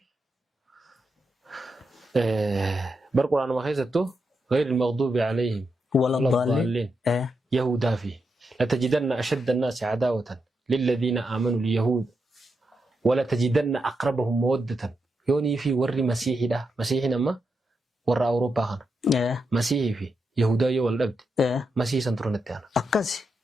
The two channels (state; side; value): normal; both; correlation 0.85